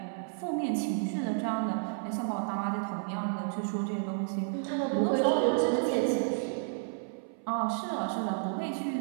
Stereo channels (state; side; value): silent; left; 57 dB below the other